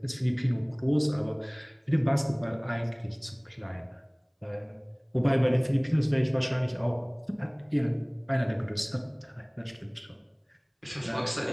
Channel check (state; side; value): identical; both; correlation 1.00